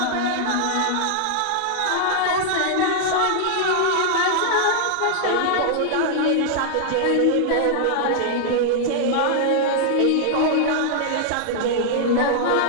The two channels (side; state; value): both; different; correlation -0.01